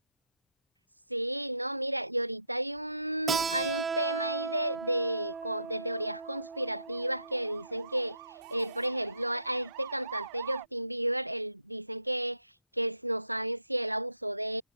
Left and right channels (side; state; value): both; inverted; correlation -0.74